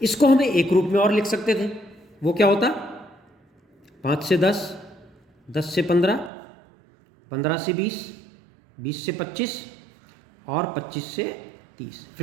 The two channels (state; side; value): drops out; left; at 6.3 s